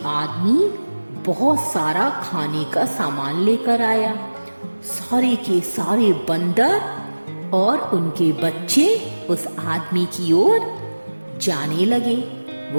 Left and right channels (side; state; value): both; inverted; correlation -1.00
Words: आदमी बहुत सारा खाने का सामान लेकर आया। सारे के सारे बंदर और उनके बच्चे उस आदमी की ओर जाने लगे।